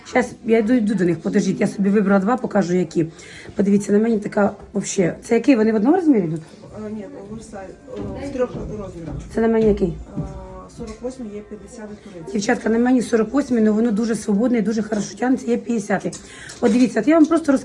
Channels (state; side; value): identical; both; correlation 1.00